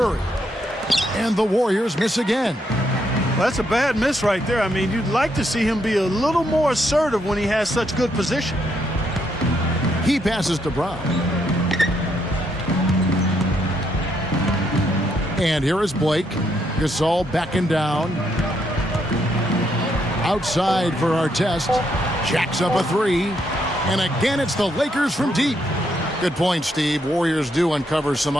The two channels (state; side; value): normal; both; correlation 0.76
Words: And the Warriors miss again. Well, that's a bad miss right there. I mean, you'd like to see him be a little more assertive when he has such good position. He passes to Brown. And here is Blake. Gasol backing down. Outside for Artest. Jacks up a 3. And again, it's the Lakers from deep. Good point, Steve. Warriors do uncover some